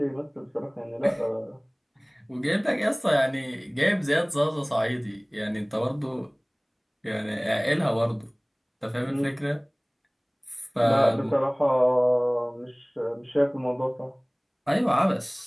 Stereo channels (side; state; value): both; identical; correlation 1.00